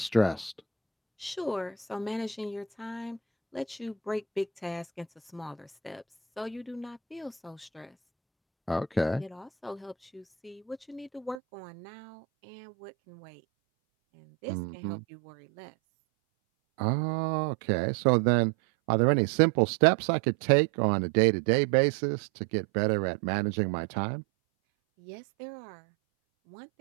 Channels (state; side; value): drops out; left; at 11.4 s